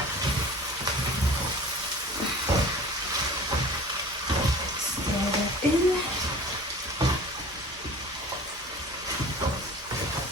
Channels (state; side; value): normal; both; correlation 0.42